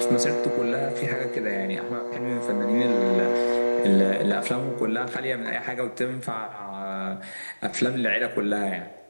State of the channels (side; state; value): both; inverted; correlation -1.00